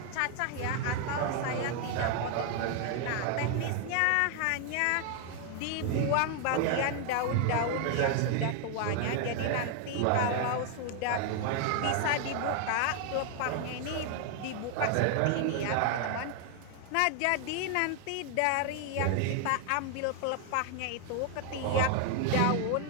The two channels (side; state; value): both; different; correlation 0.00